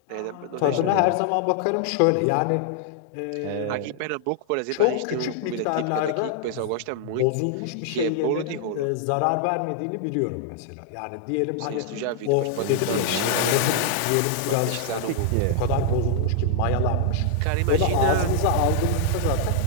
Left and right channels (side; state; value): both; different; correlation -0.01